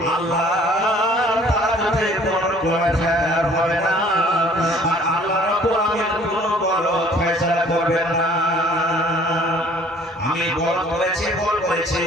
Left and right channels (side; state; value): both; normal; correlation 0.55